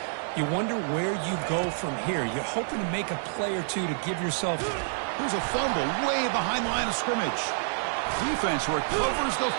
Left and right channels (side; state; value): left; silent; digital silence